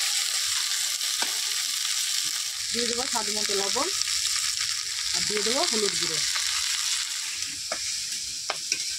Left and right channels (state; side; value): identical; both; correlation 1.00